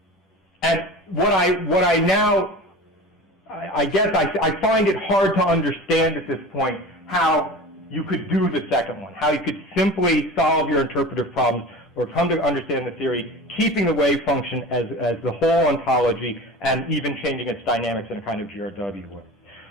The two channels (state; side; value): normal; both; correlation 0.35